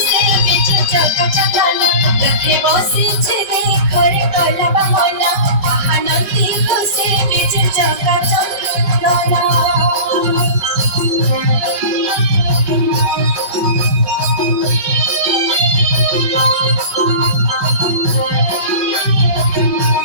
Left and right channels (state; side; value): late; left; 5.0 ms